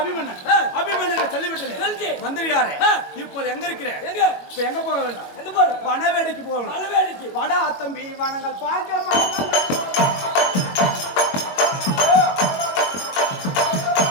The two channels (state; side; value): late; right; 21 ms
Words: அபிமன்னன் சொல்லிவிட்டது மந்திரியாரு. இப்போது எங்க இருக்கிறேன்? இப்ப எங்க போக வேண்டாம், எங்க போற? வனவேடிக்கு போகணும். வனவேடிக்கு வடா தம்பி வனங்கள் பார்க்க